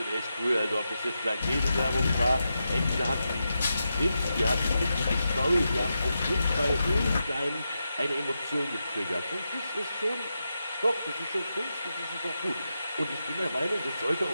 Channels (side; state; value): both; inverted; correlation -0.88